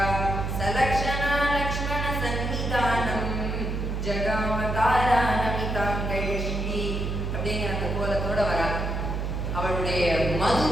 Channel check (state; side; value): noise; right; hum, 2 dB below the sound